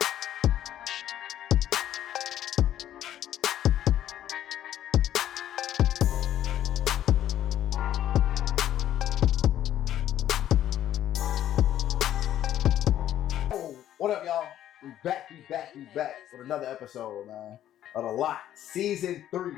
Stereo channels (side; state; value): right; quieter; 11.8 dB